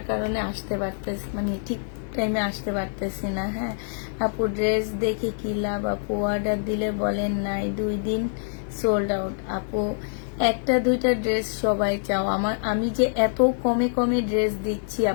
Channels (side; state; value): right; silent; digital silence